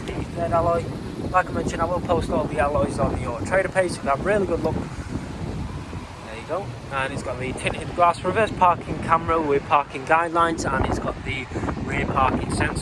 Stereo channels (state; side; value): identical; both; correlation 1.00